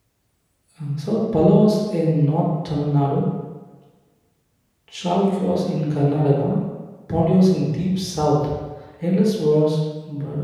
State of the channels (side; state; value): both; identical; correlation 1.00